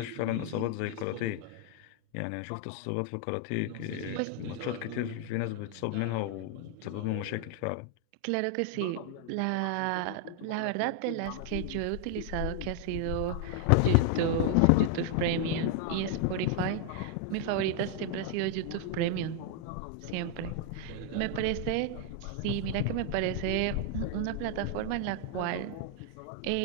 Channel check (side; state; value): both; different; correlation 0.00